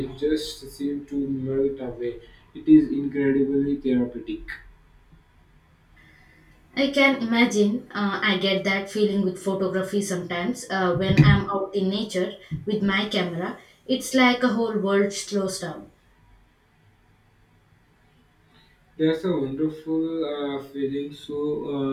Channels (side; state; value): both; identical; correlation 1.00